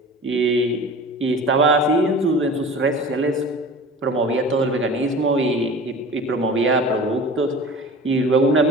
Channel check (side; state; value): both; normal; correlation 0.38